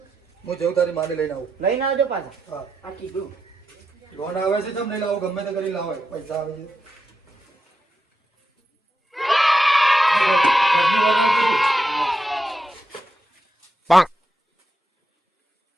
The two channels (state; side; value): normal; both; correlation 0.86